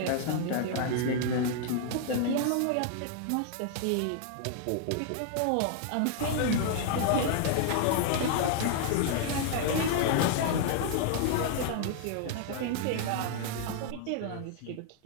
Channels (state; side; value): different; both; correlation 0.00